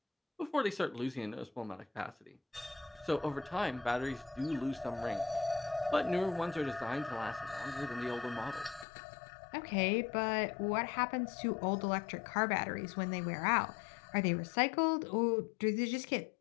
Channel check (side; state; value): right; drops out; at 8.8 s